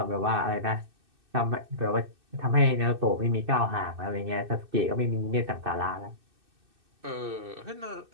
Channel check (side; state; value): left; late; 2.6 ms